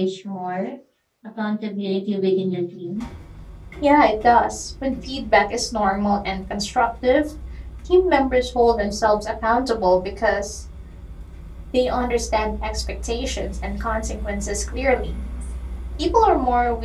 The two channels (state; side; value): identical; both; correlation 1.00